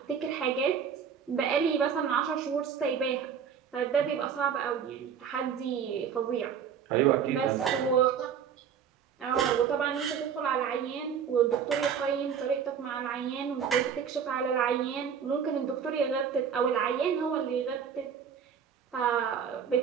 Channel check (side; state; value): left; quieter; 7.5 dB